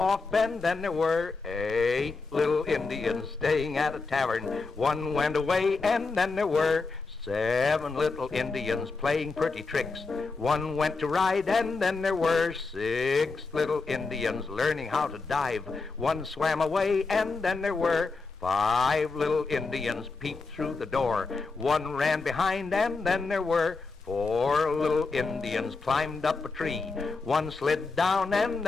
and then there were 8 little Indians staying at a tavern. One went away and then there were 7 little Indians playing pretty tricks. One went to ride and then there were 6 little Indians learning how to dive. One swam away and then there were 5 little Indians peeped through the door. One ran behind and then there were 4 little Indians climbed up a tree. One slid down and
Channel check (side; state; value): right; quieter; 4.1 dB